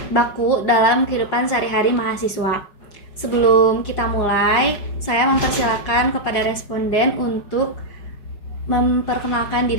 baku dalam kehidupan sehari-hari mahasiswa. Sebelum kita mulai, saya mempersilakan kepada responden untuk memperkenalkan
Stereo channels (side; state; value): right; late; 5.5 ms